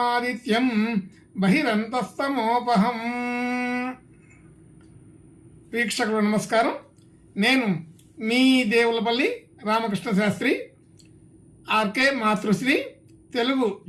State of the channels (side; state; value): both; identical; correlation 1.00